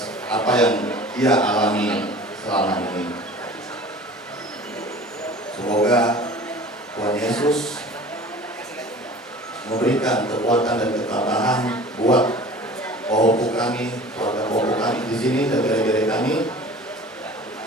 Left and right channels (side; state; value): both; normal; correlation 0.42